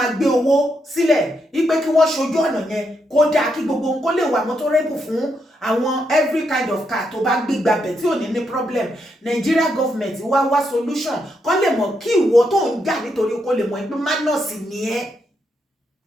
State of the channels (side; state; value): both; normal; correlation 0.80